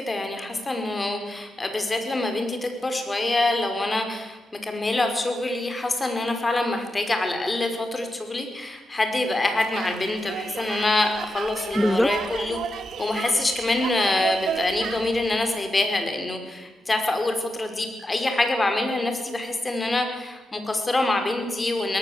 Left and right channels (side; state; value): both; normal; correlation 0.88